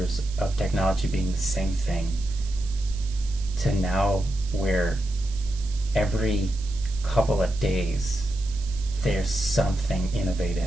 of technology being the same thing, to now where every couple of days there's something innovative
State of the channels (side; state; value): right; noise; hiss, 17 dB below the sound